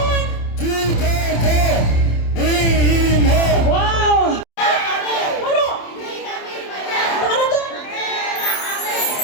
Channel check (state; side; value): late; right; 27 ms